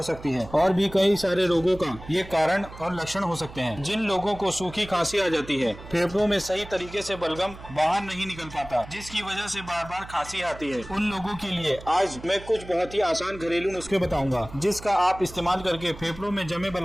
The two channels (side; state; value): right; noise; hum, 16 dB below the sound